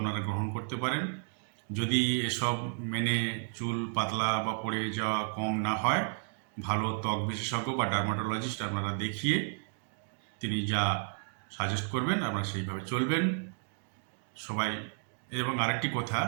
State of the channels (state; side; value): silent; left; 56 dB below the other